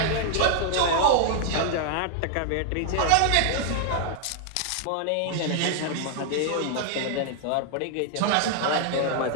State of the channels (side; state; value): both; different; correlation 0.00